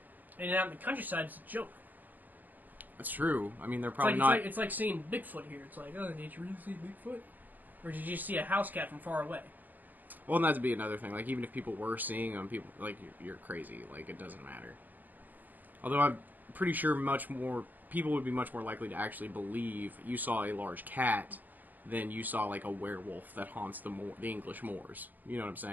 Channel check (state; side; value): late; left; 0.084 ms